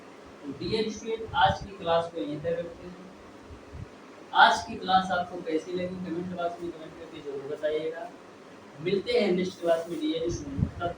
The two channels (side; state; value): both; identical; correlation 1.00